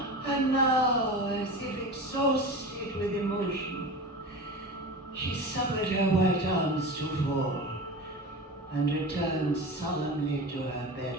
And now, as if exhausted with emotion, she suffered her white arms to fall and returned solemnly to her bed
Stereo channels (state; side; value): normal; both; correlation 0.30